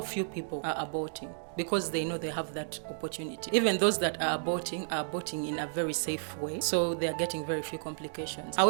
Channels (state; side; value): silent; left; digital silence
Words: few people are aborting because they know they have that opportunity. Even those that are aborting in a very safe way, so they are getting very few complications.